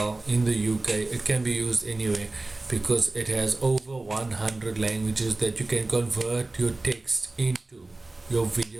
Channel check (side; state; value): left; quieter; 3.0 dB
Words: in the UK. It can be used anywhere because it has over 100 languages that you can convert your text into, your